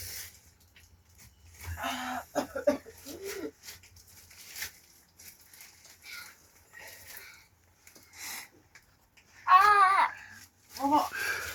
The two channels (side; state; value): both; identical; correlation 1.00